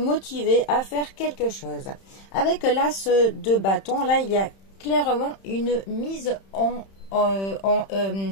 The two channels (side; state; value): right; late; 31 ms